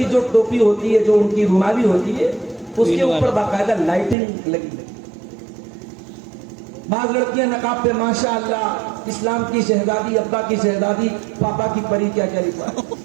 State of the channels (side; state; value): left; drops out; at 4.2 s